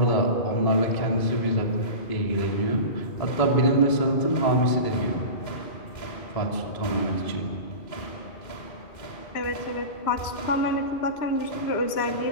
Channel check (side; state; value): right; late; 2.1 ms